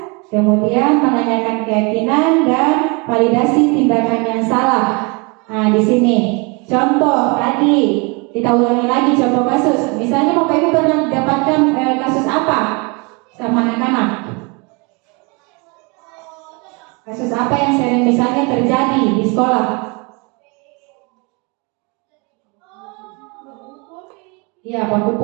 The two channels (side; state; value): left; quieter; 30.3 dB